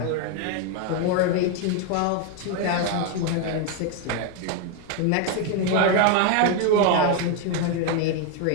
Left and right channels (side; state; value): both; different; correlation 0.01